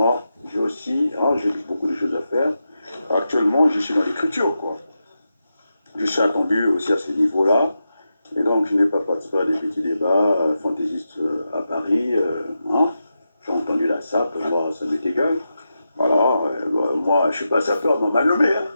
j'ai aussi, hein, j'ai beaucoup de choses à faire. Actuellement, je suis dans l'écriture, quoi. Je suis attendu aussi à ce niveau-là. Et donc, je n'ai pas participé à des petits débats fantaisistes à Paris. Hein. J'ai entendu la SAP, moi, ça m'est égal. Voilà, moi, je ne suis pas sapeur, on m'a nommé.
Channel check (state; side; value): inverted; both; correlation -0.88